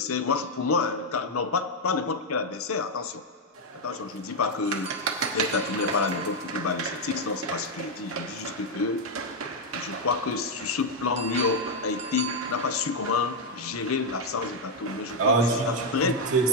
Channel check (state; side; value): normal; both; correlation 0.01